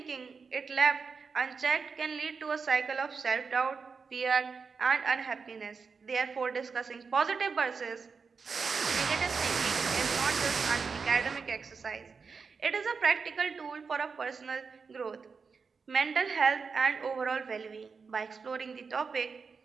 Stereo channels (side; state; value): left; quieter; 5.2 dB